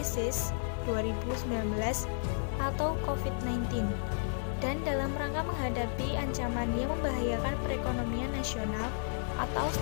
2019 atau COVID-19 dan dalam rangka menghadapi ancaman yang membahayakan perekonomian nasional atau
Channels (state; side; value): silent; right; 56 dB below the other